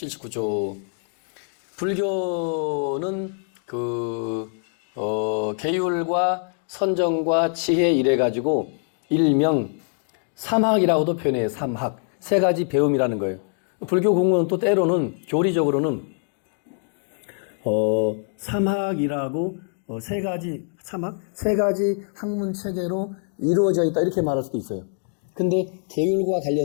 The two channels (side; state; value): right; silent; 55 dB below the other